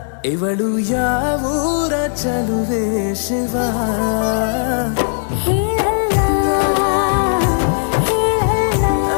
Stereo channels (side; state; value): right; silent; digital silence